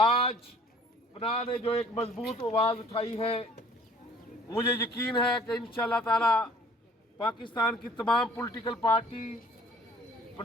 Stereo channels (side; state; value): both; normal; correlation 0.53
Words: पनाह ने जो एक मजबूत आवाज़ उठाई है, मुझे यकीन है कि इंशाअल्लाह ताला पाकिस्तान की तमाम पॉलिटिकल पार्टी